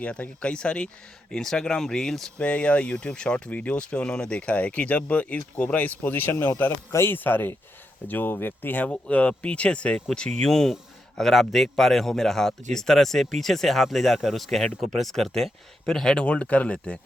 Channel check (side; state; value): both; normal; correlation 0.84